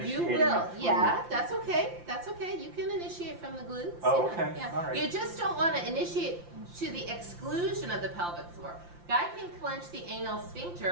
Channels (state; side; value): late; left; 5.8 ms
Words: You will. Yeah, that's okay. That's okay. You can initiate from the glutes. Oh, Yeah, okay. yeah. All right. You just don't want to initiate to the exclusion of the pelvic floor. Guy can clench the anal